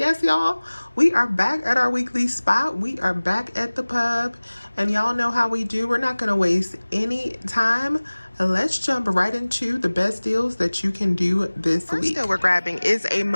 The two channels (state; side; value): inverted; both; correlation -1.00